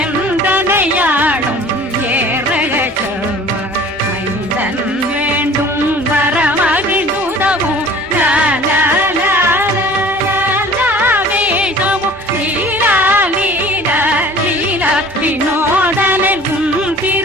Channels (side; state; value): both; normal; correlation 0.46